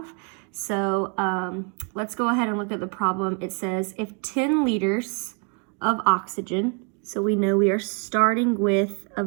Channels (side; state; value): left; quieter; 36.4 dB